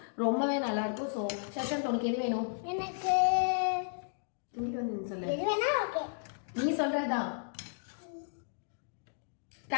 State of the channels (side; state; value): right; silent; digital silence